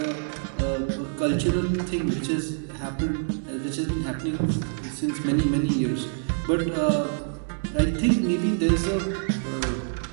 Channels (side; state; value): left; silent; digital silence